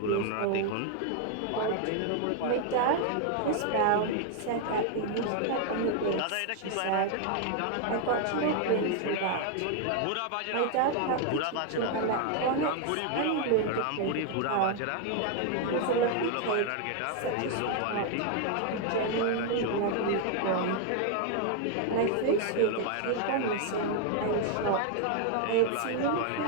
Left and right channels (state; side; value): different; both; correlation 0.00